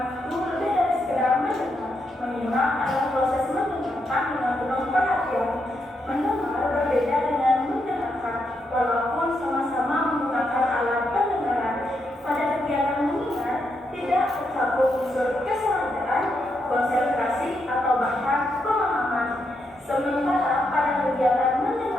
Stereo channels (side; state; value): both; normal; correlation 0.81